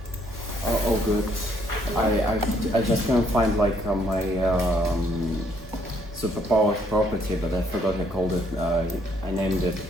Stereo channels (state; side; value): normal; both; correlation 0.68